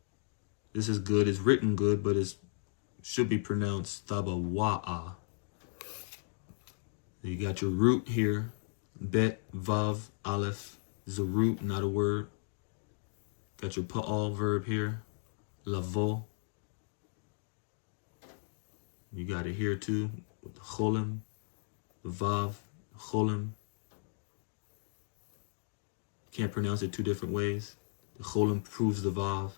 This is good. It's written good, but it should be pronounced tabawa'a. You got your root here. Bet, vav, aleph. This is a root, not a word. Got your pa'al verb here. Lavo. You got it here too. With the cholim. The vav. Cholim. Can't pronounce it two different ways. The cholim proves the vav.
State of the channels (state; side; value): silent; right; digital silence